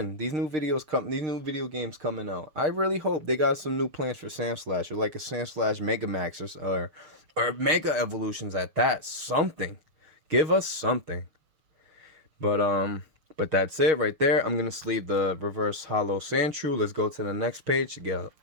These new video games coming out. I really hope they got some new plans for Sandslash, or like a Sandslash Megamax, or Mega Evolutions at that. Something. Give us something. But that's it right there. I'm gonna sleeve the reverse hollow Sandshrew. Let's go to the next page to get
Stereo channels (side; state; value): left; late; 6.7 ms